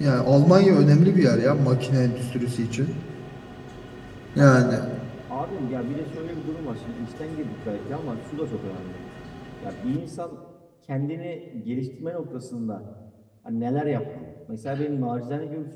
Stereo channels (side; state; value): both; identical; correlation 1.00